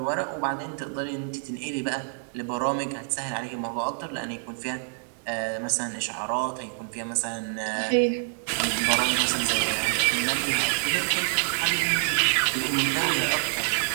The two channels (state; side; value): silent; left; digital silence